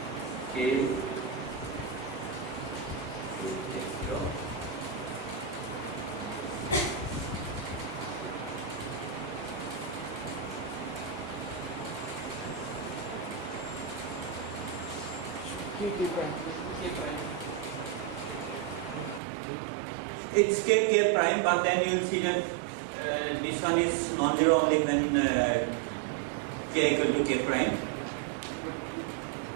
k x0 it's k prime, but then you will see that this one is non-zero only when k equal to k prime.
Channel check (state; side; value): drops out; left; at 19.2 s